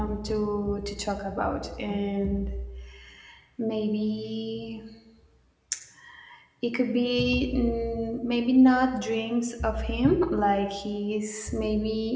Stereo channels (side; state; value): both; identical; correlation 1.00